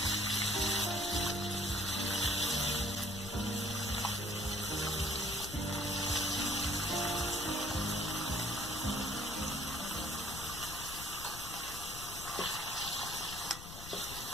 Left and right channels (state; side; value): noise; left; rumble, 11 dB below the sound